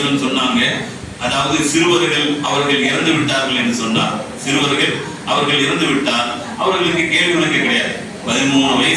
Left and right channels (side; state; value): both; identical; correlation 1.00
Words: சொன்னாங்க, அதாவது சிறுவர்கள் அவர்கள் இறந்து விட்டார்கள் என்று சொன்னார். சிறுவர்கள் அவர்கள் இறந்து விட்டால் அவர்களுக்கு கேள்வி கணக்கு கிடையாது. 13